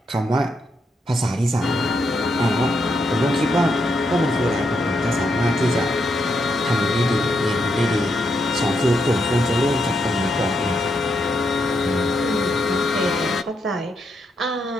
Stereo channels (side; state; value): both; normal; correlation 0.81